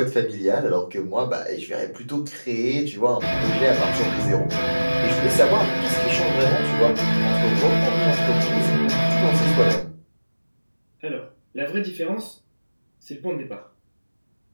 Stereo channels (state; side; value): inverted; both; correlation -1.00